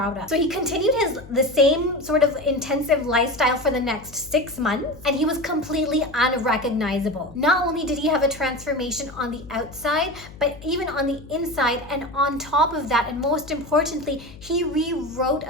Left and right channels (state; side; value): noise; left; hum, 18 dB below the sound